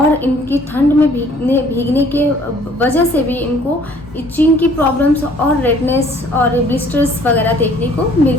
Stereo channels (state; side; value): normal; both; correlation 0.57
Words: इनकी ठंड में भीगने के वजह से भी इनको इचिंग की प्रॉब्लम्स और रेडनेस और ब्लिस्टर्स वगैरह देखने को